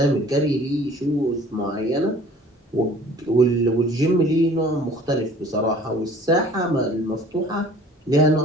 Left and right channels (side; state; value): both; normal; correlation 0.50